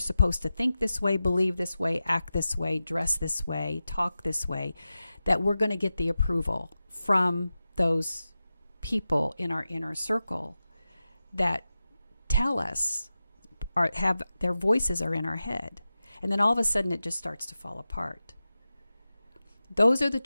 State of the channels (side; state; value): both; inverted; correlation -0.94